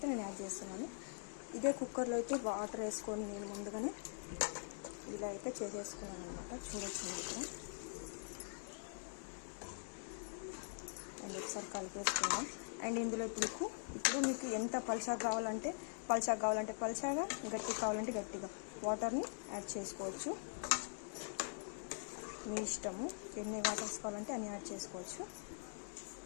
నేను యాడ్ చేస్తున్నాను. ఇదే కుక్కర్లో అయితే వాటర్ వేసుకొని నేను ముందుగానే ఇలా అయితే చేసేసుకున్నాను అనమాట. చూడొచ్చు ఇక్కడ. అండ్ ఒకసారి కలిపేసుకున్నాం. అండ్ ఇందులో ఇప్పుడు మీకు ఎంత పల్చగా కావాలంటే పల్చగా, గట్టిగా కావాలంటే గట్టిగా వాటర్ని యాడ్ చేసుకోవచ్చు. మీ ఇష్టము, ఎన్ని వాటర్స్ కావాలంటే అన్ని యాడ్ చేసుకోవచ్చు.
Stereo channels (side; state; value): right; silent; digital silence